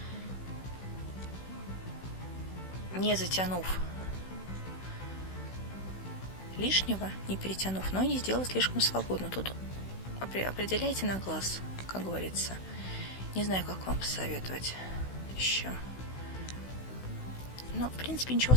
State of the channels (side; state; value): right; late; 16 ms